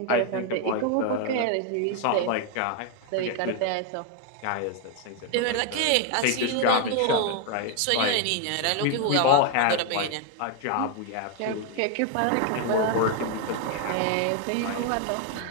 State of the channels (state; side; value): different; both; correlation 0.01